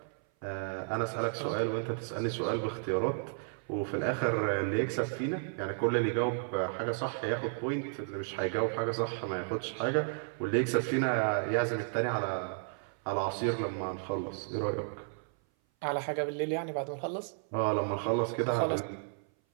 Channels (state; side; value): silent; left; 56 dB below the other